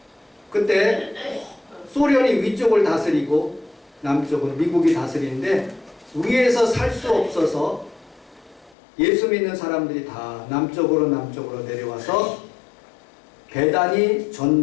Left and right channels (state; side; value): drops out; right; at 8.8 s